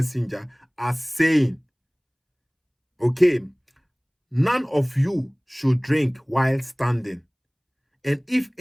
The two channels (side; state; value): both; identical; correlation 1.00